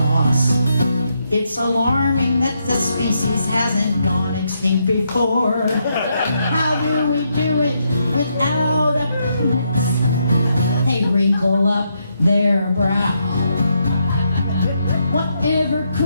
it's alarming that the species hasn't gone extinct before. How do we do it without a penis? They wrinkle up their brow. Whatever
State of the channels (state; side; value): inverted; both; correlation -0.79